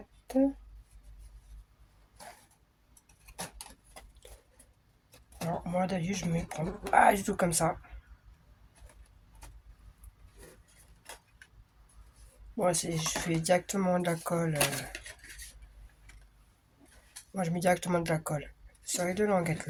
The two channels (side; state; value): both; identical; correlation 1.00